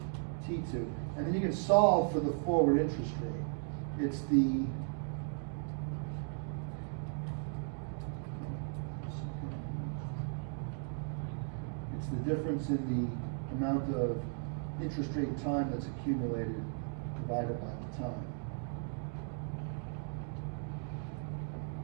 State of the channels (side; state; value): left; silent; 53 dB below the other